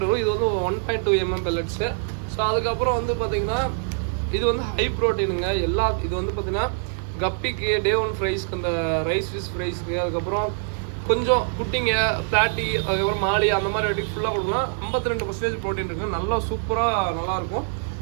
வரும். இது வந்து 1.2 mm பில்லட்ஸு. ஸோ அதுக்கப்புறம் வந்து பார்த்தீங்கன்னா இது வந்து ஹை ப்ரோட்டீனுங்க. இது வந்து பார்த்தீங்கன்னா கப்பிக்கு, டே ஒன் ஃப்ரைஸ்க்கு, அந்த ரைஸ் ஃபிஷ் ஃப்ரைஸ்க்கு, அதுக்கப்புறம் கொஞ்சம் குட்டிங்க, பிளாட்டி, அதுக்கப்புறம் மாலி, அந்த மாதிரி வாட்டிக்கு ஃபுல்லாக கொடுக்கலாம். 52% ப்ரோட்டீன் இருக்குது. நல்லா சூப்பராக நல்லாயிருக்கும்.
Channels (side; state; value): left; silent; digital silence